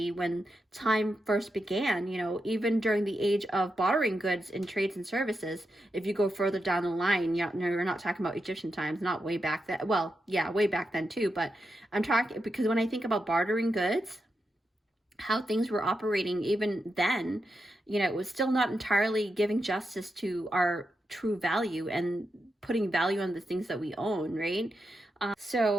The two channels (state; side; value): normal; both; correlation 0.87